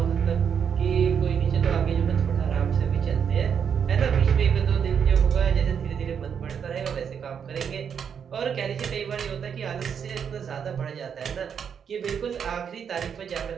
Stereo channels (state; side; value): quieter; left; 7.4 dB